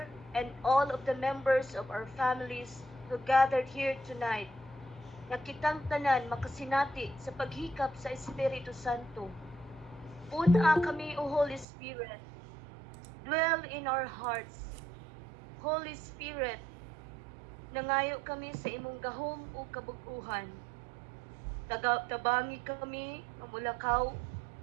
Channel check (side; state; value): left; drops out; at 11.7 s